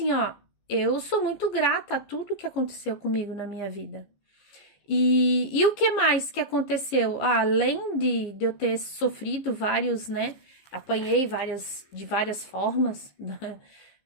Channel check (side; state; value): right; late; 15 ms